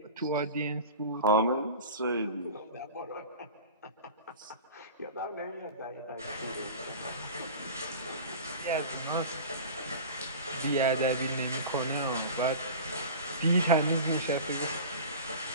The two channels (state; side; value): inverted; both; correlation -0.36